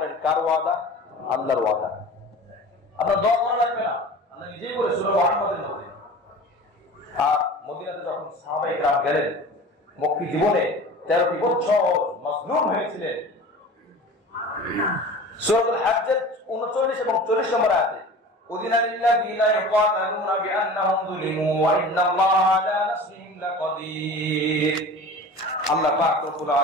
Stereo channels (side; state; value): both; normal; correlation 0.38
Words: কার ওয়াদা? আল্লাহর ওয়াদা। আপনার দোয়া করা লাগবে না, আল্লাহ নিজেই বলে সূরা মুহাম্মাদের মধ্যে। আর মদিনাতে যখন সাহাবায়ে কেরাম গেলেন, মক্কি জীবনে 13টি বছর মাজলুম হয়েছিলেন। সূরাতুল হজ্জের 39 এবং 40 নম্বর আয়াতে উযিনা লিল্লাযিনা ইয়াকাতালুনা বিআন্নাহুম যুলিমু ওয়া ইন্নাল্লাহা আলা নাসরিহিম লাকাদির। আল্লাহ পাক রব্বুল